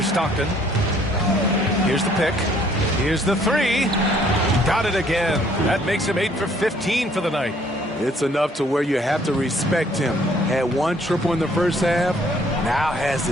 Stockton. Here's the pick. Here's the three. Got it again. That makes him 8 for 15 for the night. It's enough to where you have to respect him. Had one triple in the first half, now has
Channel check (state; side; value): normal; both; correlation 0.62